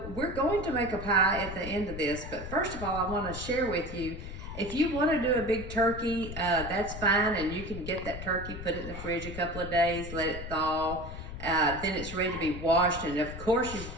we're going to make a pie at the end of this, but first of all, I want to share with you, if you want to do a big turkey, that's fine, and you can get that turkey, put it in the fridge a couple of days, let it thaw, then it's ready to be washed, and of course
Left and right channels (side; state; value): left; noise; rumble, 9 dB below the sound